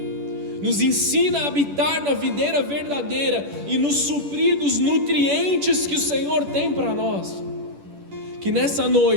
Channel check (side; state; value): left; late; 10 ms